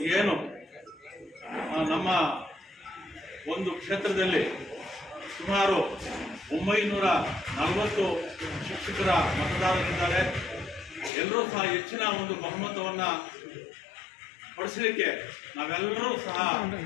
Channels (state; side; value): drops out; right; at 11.1 s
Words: ಏನು ನಮ್ಮ ಒಂದು ಕ್ಷೇತ್ರದಲ್ಲಿ ಸುಮಾರು 940 ಶಿಕ್ಷಕರ ಮತದಾರರಿದ್ದಾರೆ. ಎಲ್ಲರೂ ಸಹ ಹೆಚ್ಚಿನ ಒಂದು ಬಹುಮತವನ್ನು ಪಡಿಸಲಿಕ್ಕೆ ನಾವೆಲ್ಲರೂ ಸಹ